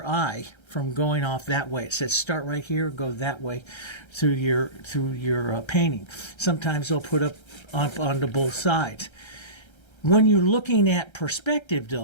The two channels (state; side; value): late; right; 1.3 ms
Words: eye from going off that way. It says start right here, go that way through your painting. Sometimes they'll put up onto both sides. When you're looking at perspective,